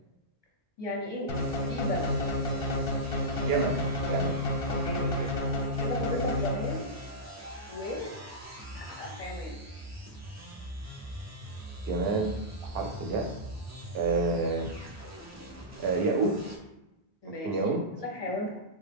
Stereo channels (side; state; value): both; normal; correlation -0.12